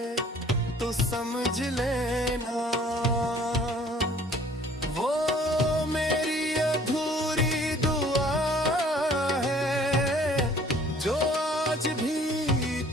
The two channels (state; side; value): normal; both; correlation 0.55